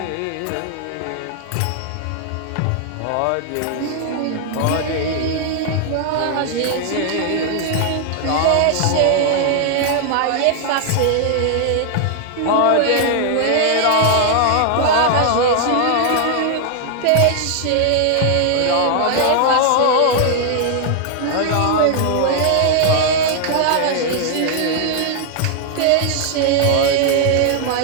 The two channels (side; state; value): both; different; correlation 0.00